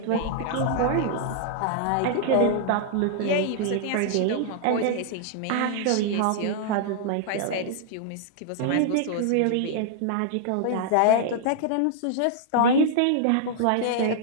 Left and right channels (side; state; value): both; different; correlation -0.01